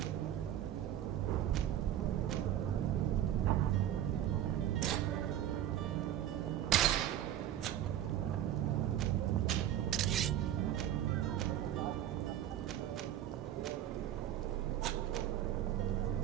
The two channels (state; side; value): quieter; left; 11.5 dB